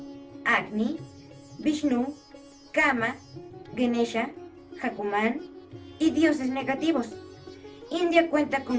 Agni, Vishnu, Kama, Ganesha, Hanuman y dioses negativos. India cuenta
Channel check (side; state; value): both; identical; correlation 1.00